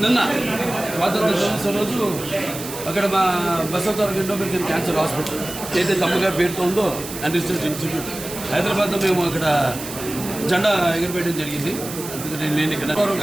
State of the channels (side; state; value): right; noise; hiss, 10 dB below the sound